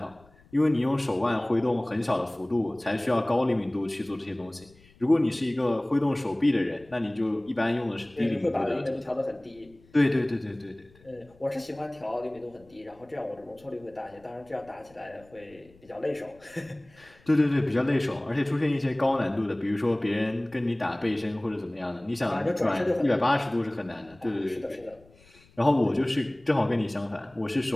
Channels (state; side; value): noise; left; rumble, 28 dB below the sound